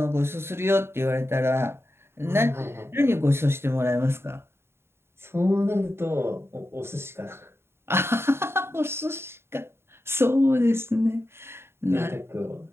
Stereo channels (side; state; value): left; late; 0.12 ms